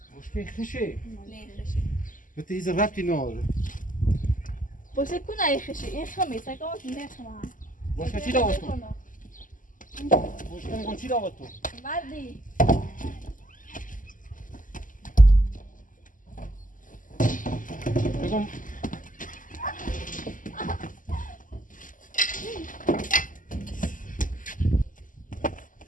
بشکره خشه نه خشی بته ایز ربطی ناره باشه کنه ای خشی این خمی سکامت نه خمه بشکره چی داوت تو؟ بشکره میگم چی داوت تو؟ وردی بگم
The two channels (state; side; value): late; right; 0.38 ms